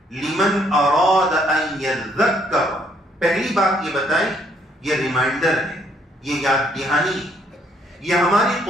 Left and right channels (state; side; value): normal; both; correlation 0.68